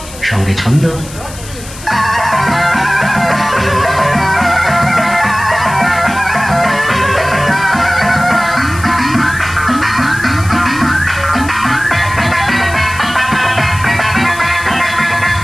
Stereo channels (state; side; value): noise; left; hiss, 15 dB below the sound